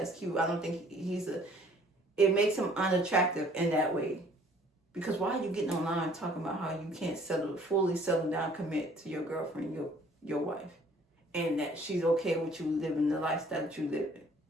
cute. I don't think it makes him unattractive in that way. Because why are you getting online talking about how you can't fully settle down, commit to your girlfriend, your wife, and that she's okay with you living the lifestyle that you live in?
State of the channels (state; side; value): normal; both; correlation 0.57